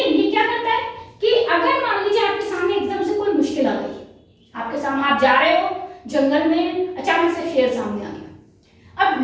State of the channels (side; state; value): both; identical; correlation 1.00